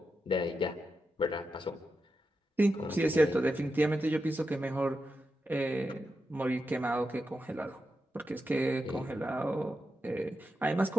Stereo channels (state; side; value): normal; both; correlation 0.88